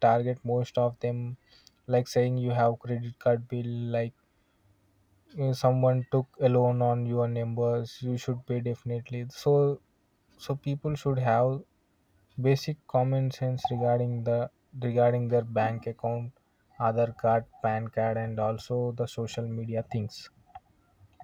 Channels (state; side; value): identical; both; correlation 1.00